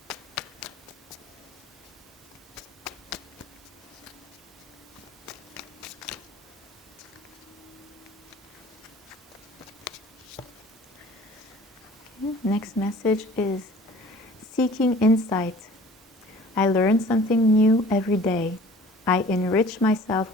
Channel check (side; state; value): both; normal; correlation 0.47